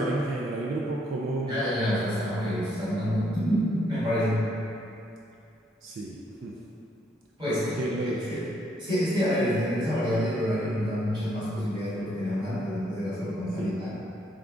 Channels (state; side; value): normal; both; correlation 0.71